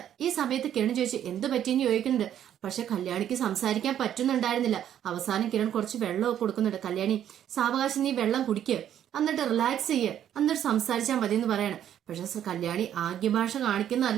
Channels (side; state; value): left; quieter; 10.4 dB